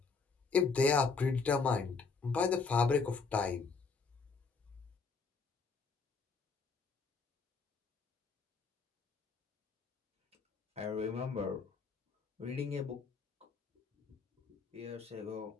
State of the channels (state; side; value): quieter; right; 4.8 dB